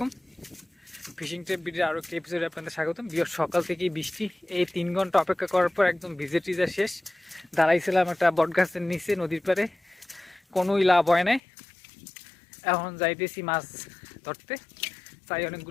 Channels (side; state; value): right; drops out; at 11.4 s